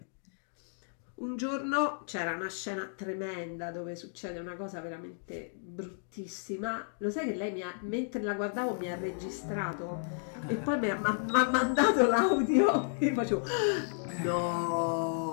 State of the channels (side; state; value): right; silent; digital silence